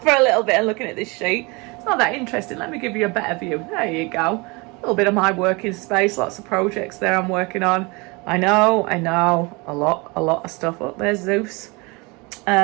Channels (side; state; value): left; quieter; 27.3 dB